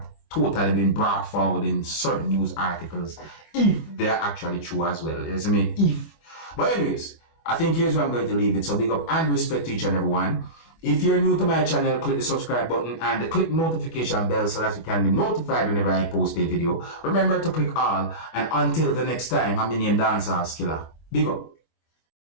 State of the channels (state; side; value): late; right; 25 ms